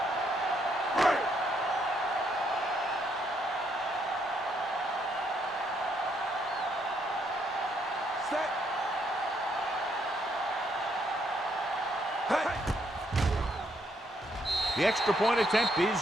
The extra point attempt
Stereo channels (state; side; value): normal; both; correlation 0.73